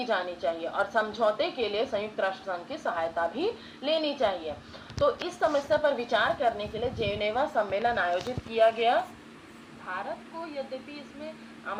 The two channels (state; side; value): identical; both; correlation 1.00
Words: जानी चाहिए और समझौते के लिए संयुक्त राष्ट्र संघ की सहायता भी लेनी चाहिए। तो इस समस्या पर विचार करने के लिए जेनेवा सम्मेलन आयोजित किया गया। भारत को यद्यपि इसमें